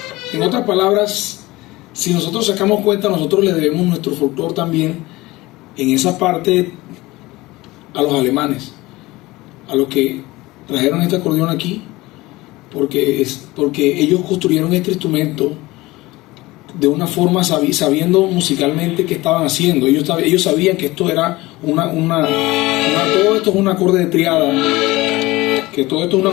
En otras palabras, si nosotros sacamos cuenta, nosotros le debemos nuestro folclore también en esa parte a los alemanes, a los que trajeron este acordeón aquí, porque ellos construyeron este instrumento de una forma sabiendo musicalmente qué estaban haciendo. Ellos sabían que esto era todo esto es un acorde de triada,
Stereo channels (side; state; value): right; quieter; 20.0 dB